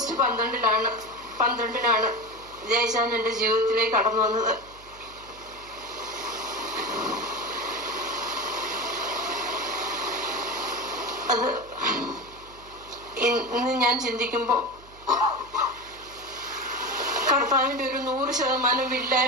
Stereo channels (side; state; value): right; noise; hum, 22 dB below the sound